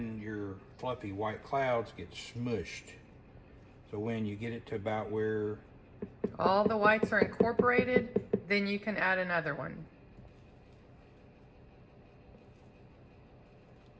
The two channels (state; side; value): identical; both; correlation 1.00